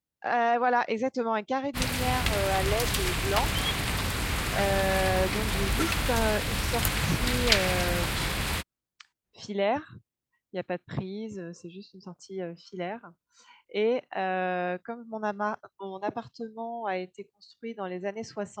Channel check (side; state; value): both; identical; correlation 1.00